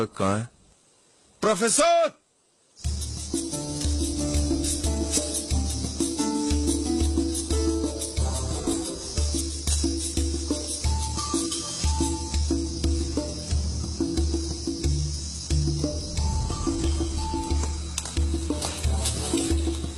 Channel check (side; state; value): both; identical; correlation 1.00